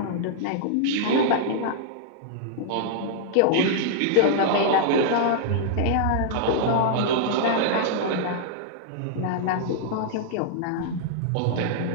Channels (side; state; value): both; different; correlation -0.01